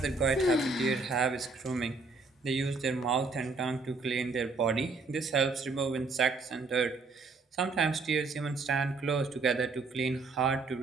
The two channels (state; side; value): quieter; left; 3.9 dB